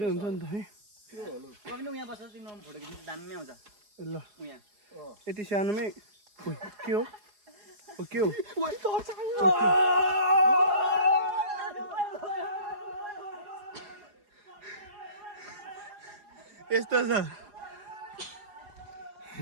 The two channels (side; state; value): left; late; 4.8 ms